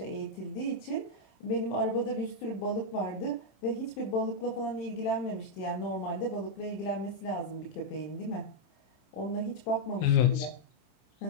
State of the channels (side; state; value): right; late; 27 ms